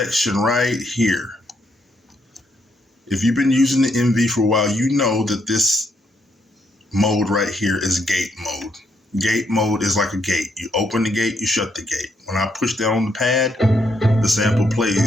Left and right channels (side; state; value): both; normal; correlation 0.76